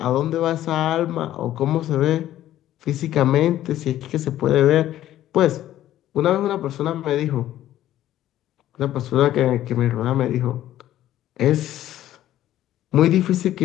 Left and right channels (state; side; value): quieter; right; 13.0 dB